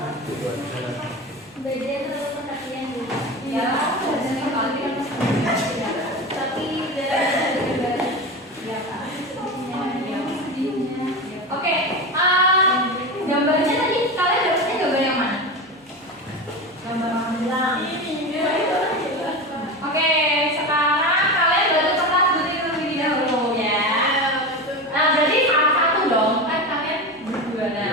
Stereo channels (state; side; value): normal; both; correlation 0.24